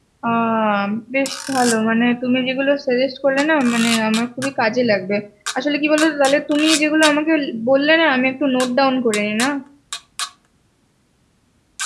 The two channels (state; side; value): identical; both; correlation 1.00